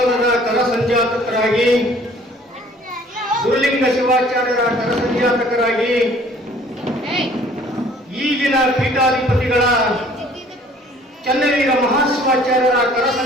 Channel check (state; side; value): normal; both; correlation 0.54